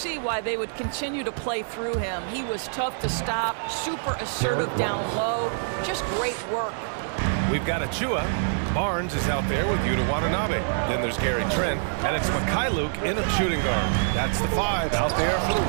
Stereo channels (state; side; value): silent; left; digital silence